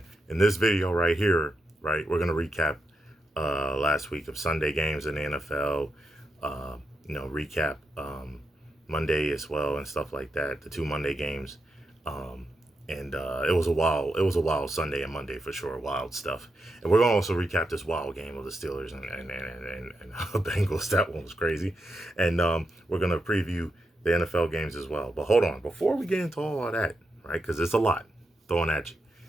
in this video right here, right, we're gonna recap last week of Sunday games in the NFL. Recap Monday as well and stuff like that. The two Monday games, and it was a wild Sunday and Monday for sure. Wild stuff. And we're gonna also recap this wild game of the Steelers and Bengals. That one was crazy. And we're gonna preview the NFL games as well. But hold on, before we get into all of that, right? Because it's a lot throwing at you.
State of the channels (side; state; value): both; normal; correlation 0.85